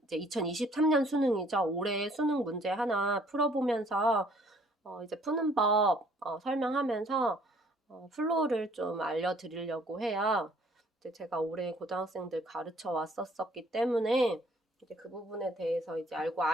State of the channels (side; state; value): both; normal; correlation 0.60